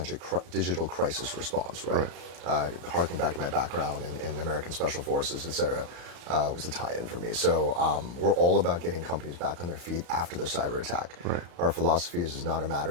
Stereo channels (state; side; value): late; left; 34 ms